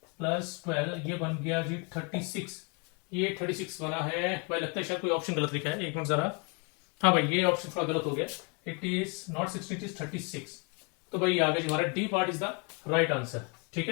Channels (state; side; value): quieter; right; 32.9 dB